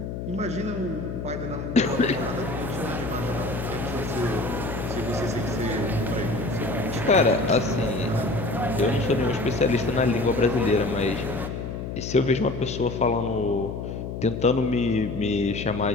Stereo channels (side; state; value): left; noise; hum, 6 dB below the sound